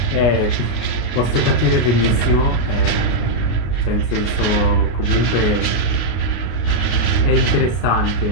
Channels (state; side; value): late; right; 33 ms